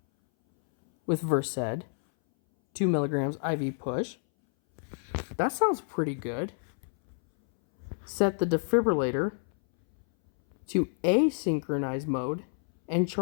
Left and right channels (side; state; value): right; silent; 59 dB below the other